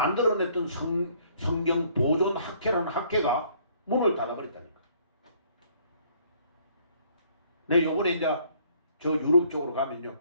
성경 보존 학회라는 학회가 문을 닫아버렸다니까. 내 요번에 이제 저 유럽 쪽으로 가면요.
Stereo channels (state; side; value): inverted; both; correlation -0.62